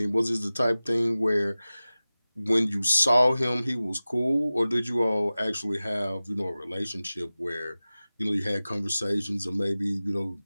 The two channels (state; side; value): inverted; both; correlation -0.97